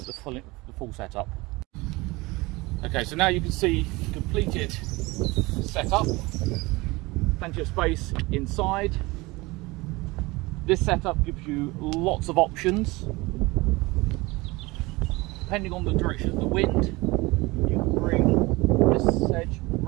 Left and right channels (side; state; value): left; quieter; 22.6 dB